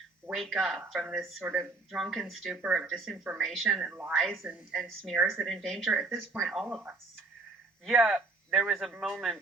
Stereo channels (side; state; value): left; quieter; 3.5 dB